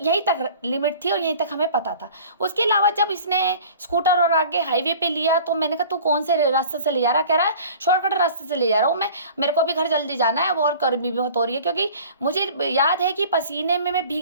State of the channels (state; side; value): inverted; both; correlation -0.45